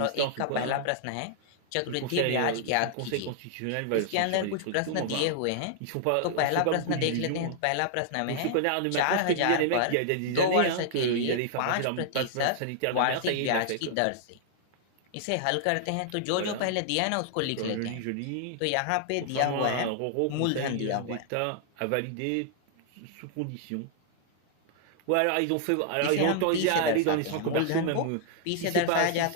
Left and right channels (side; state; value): both; different; correlation -0.01